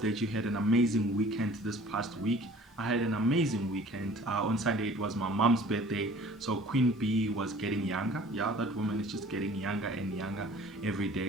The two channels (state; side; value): normal; both; correlation 0.49